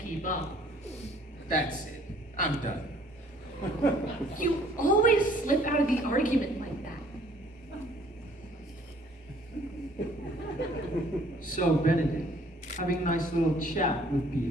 keep up. That's it. I'm done. You always slip out of the argument like that. So, Benedict, having a nice little chat with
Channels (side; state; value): both; normal; correlation 0.58